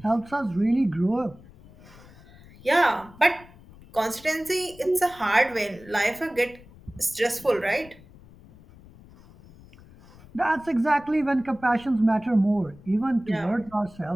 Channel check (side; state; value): left; noise; rumble, 22 dB below the sound